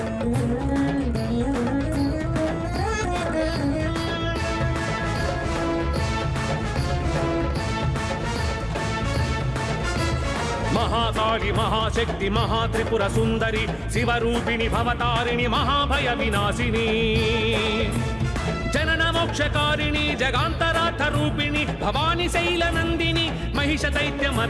మహాకాళి మహాశక్తి మహాత్రిపుర సుందరి శివరూపిణి భవతారిణి మహాభయ వినాశిని జనన మోక్షకారిణి జగాంతరార్థ రూపిణి భవాని శైల నందిని మహిష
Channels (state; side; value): identical; both; correlation 1.00